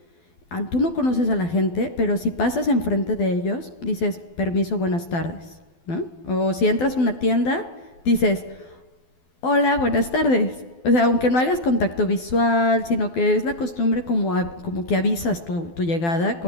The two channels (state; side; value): late; right; 12 ms